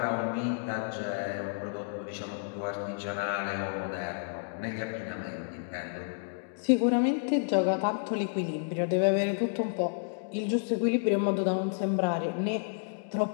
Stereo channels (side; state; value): right; silent; digital silence